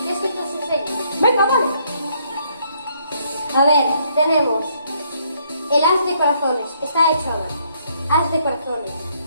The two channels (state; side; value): inverted; both; correlation -0.69